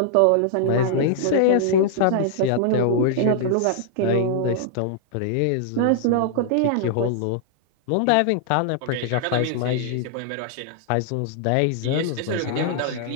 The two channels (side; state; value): both; different; correlation -0.01